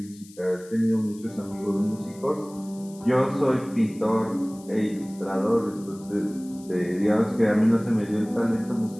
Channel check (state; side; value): noise; left; hiss, 23 dB below the sound